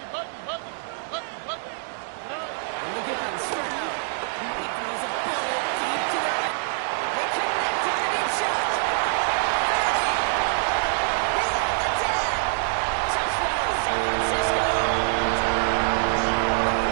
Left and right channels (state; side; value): silent; left; digital silence